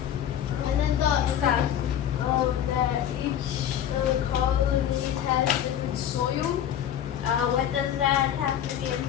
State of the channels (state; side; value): quieter; right; 10.1 dB